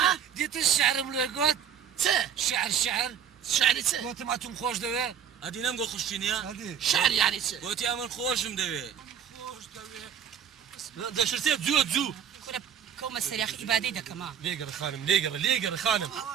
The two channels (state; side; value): quieter; left; 8.5 dB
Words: دیتە شعرم لێ گوت چێ شعر شعری چێ گوتم ئەتون خۆش دەوێ ئەدی نەم بۆ خوشینە شعر یانی چێ گوتی ئەمن خۆشم دەوێ خۆش دەوێ دەشتێت زووە زوو كنا كوما سريخ إبادي دا كمان لێگەڕ خانم لێگەڕ خانم